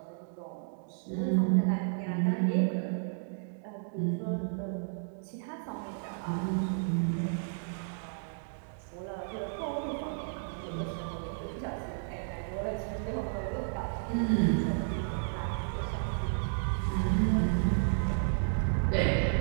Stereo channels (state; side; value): silent; left; digital silence